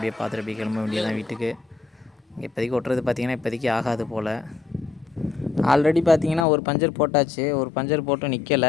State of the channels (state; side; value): drops out; right; at 6.5 s